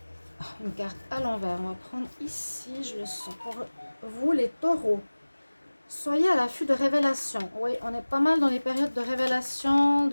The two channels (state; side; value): inverted; both; correlation -1.00